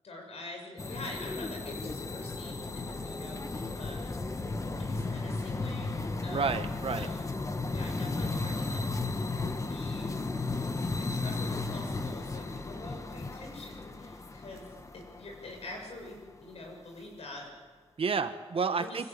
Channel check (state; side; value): normal; both; correlation 0.65